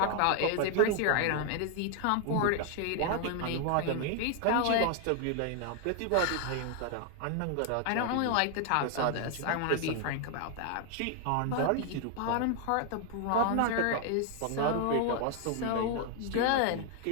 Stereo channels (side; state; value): both; different; correlation 0.00